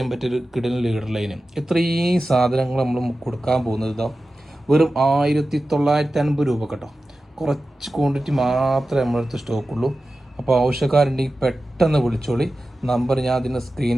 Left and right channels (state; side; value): normal; both; correlation 0.94